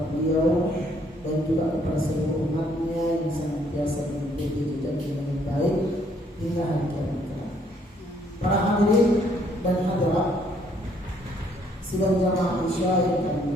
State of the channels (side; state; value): both; normal; correlation 0.66